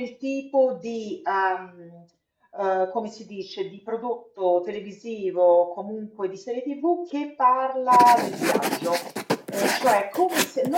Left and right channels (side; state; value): both; identical; correlation 1.00